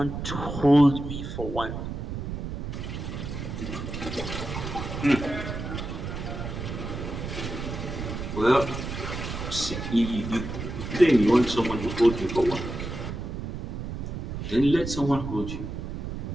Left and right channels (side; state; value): right; noise; rumble, 5 dB below the sound